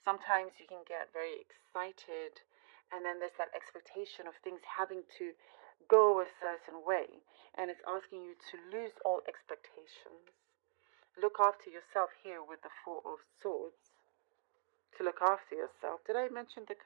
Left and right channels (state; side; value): silent; left; digital silence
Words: you can get very excited, and then there's that expectation of things having to go a certain way, and it's asking you to lose all expectations. Look after yourself here with the Four of Swords. To look after yourself. Did I mention the